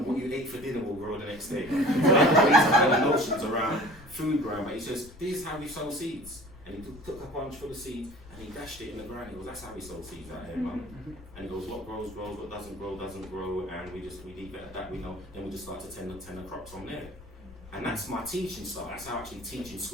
what you ate for dinner will grow the next day. So these kind of notions around food growing, but he says, this is how we sow seeds. And he took a bunch full of seeds and he dashed it in the ground. He goes, that's how we sow seeds out here, man. And he goes, what grows, grows, what doesn't grow, and we leave it at that, we know, then we just start to tend the crops from there. And that's my teaching style. That's how I actually teach in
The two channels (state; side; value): noise; left; rumble, 19 dB below the sound